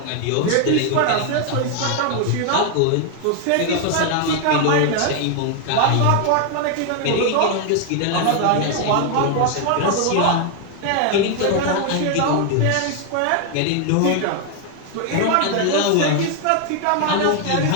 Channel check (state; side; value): different; both; correlation 0.01